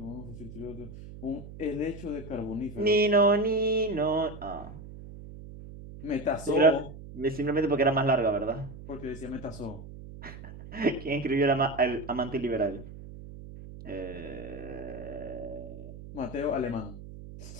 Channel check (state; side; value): noise; right; hum, 14 dB below the sound